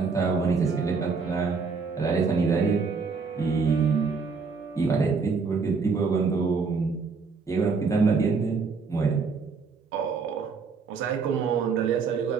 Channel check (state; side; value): quieter; left; 4.9 dB